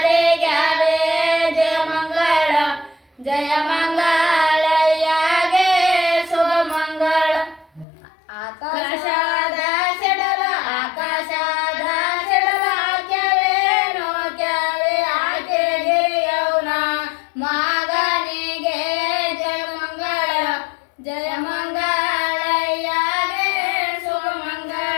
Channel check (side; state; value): right; drops out; at 7.9 s